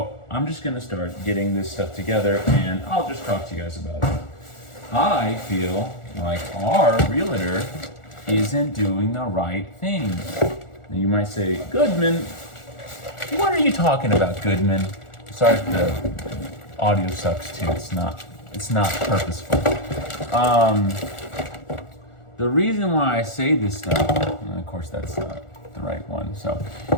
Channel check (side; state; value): right; late; 1.4 ms